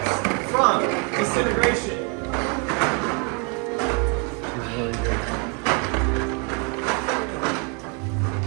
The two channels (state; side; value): quieter; left; 34.9 dB